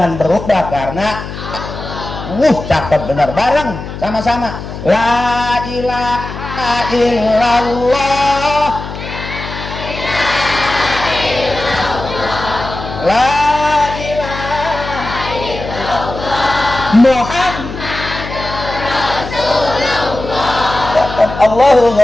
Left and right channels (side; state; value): left; noise; hum, 9 dB below the sound